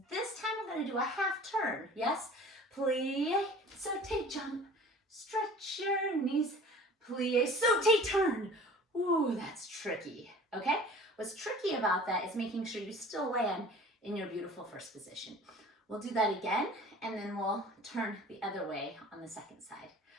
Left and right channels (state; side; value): normal; both; correlation 0.44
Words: This time we're going to do a half turn, yes? Plie, sauté, jump, stretch your knees, plie, sauté, turn. Ooh, that's tricky, okay? What's tricky about that is making sure you still land in your beautiful first position. We'll do that again, and then we'll turn the other way on the second side.